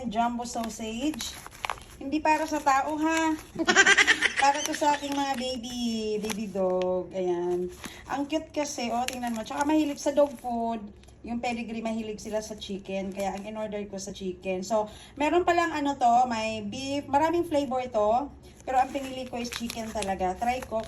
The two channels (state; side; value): identical; both; correlation 1.00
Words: jumbo sausage. Hindi para sa tao ha. Para to sa aking mga baby dog. Ayan. Ang cute kasi, oh, tingnan mo. Tsaka mahilig sa dog food. Yung pedigree, mahilig sila sa chicken. Kaya ang in-order ko sa chicken. So, meron palang ano to, may beef. Maraming flavor to. Pero ang pinili ko is chicken talaga. Try ko